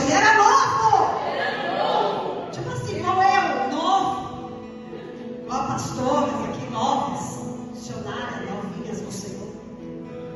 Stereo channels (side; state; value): both; identical; correlation 1.00